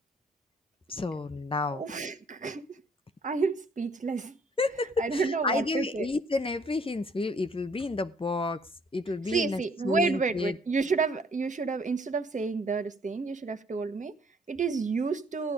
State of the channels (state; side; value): normal; both; correlation 0.62